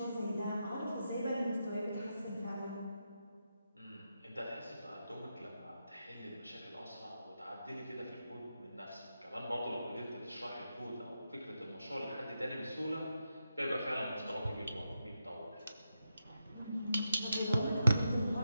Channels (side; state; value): both; inverted; correlation -0.87